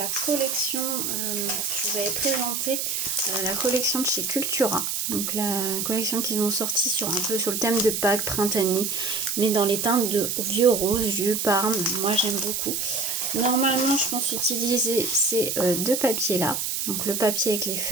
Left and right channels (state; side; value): noise; right; hiss, 1 dB below the sound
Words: collection, je vous avais présenté la collection de chez Cultura. Donc la collection qu'ils ont sorti sur un peu sur le thème de Pâques, printanier, mais dans les teintes de vieux rose, vieux parme, moi j'aime beaucoup. Normalement je pense utiliser ces deux papiers là. Donc le papier avec les